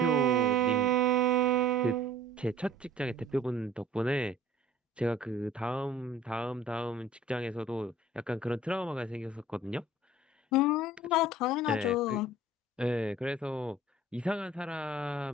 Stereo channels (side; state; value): both; normal; correlation 0.49